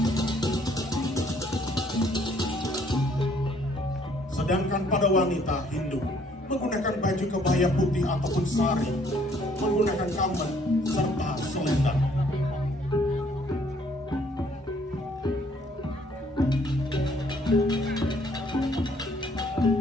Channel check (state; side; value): normal; both; correlation 0.63